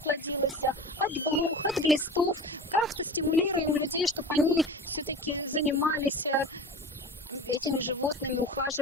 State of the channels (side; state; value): both; normal; correlation 0.34